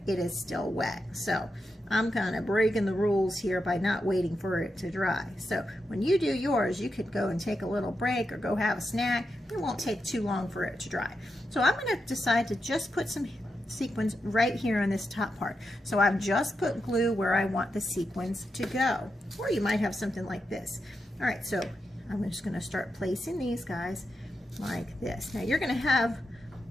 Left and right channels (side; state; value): both; normal; correlation 0.87